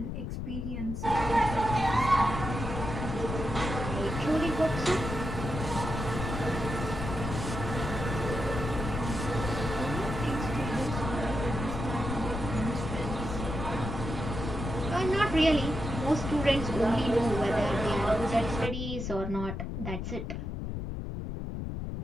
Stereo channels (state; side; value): noise; left; rumble, 5 dB below the sound